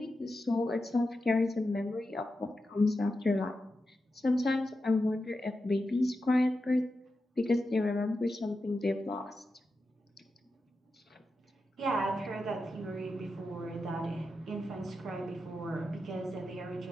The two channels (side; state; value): both; normal; correlation 0.89